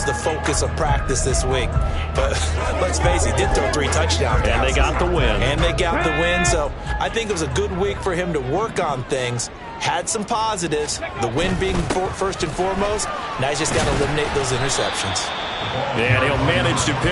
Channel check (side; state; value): both; identical; correlation 1.00